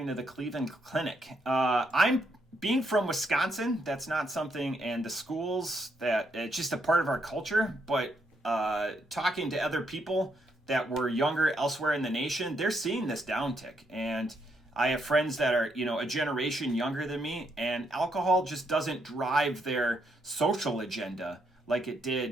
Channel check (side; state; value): both; normal; correlation 0.77